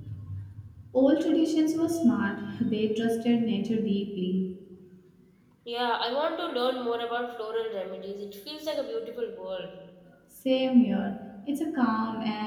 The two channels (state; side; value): identical; both; correlation 1.00